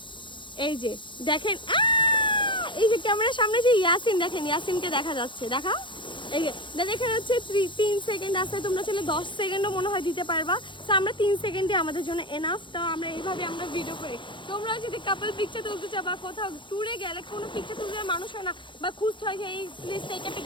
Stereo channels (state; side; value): late; right; 0.23 ms